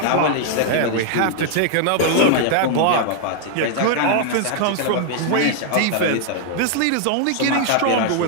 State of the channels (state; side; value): different; both; correlation 0.00